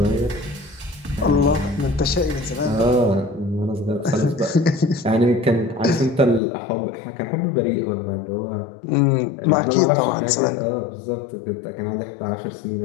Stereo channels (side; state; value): right; drops out; at 6.4 s